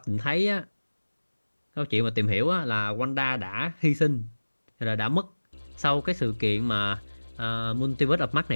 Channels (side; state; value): both; inverted; correlation -1.00